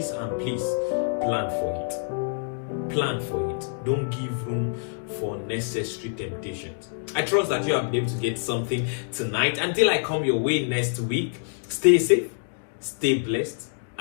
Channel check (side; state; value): right; silent; digital silence